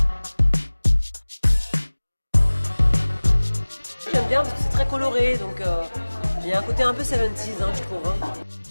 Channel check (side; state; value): both; inverted; correlation -1.00